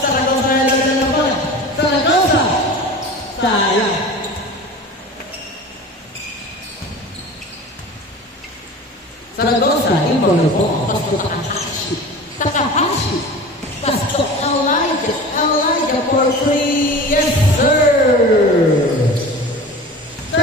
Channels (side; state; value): both; normal; correlation 0.36